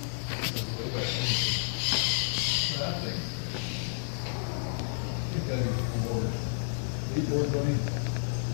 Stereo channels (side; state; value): right; silent; digital silence